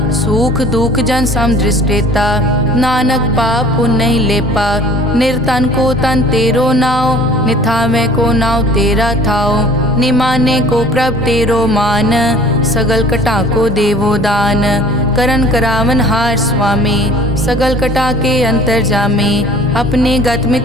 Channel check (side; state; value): both; normal; correlation 0.49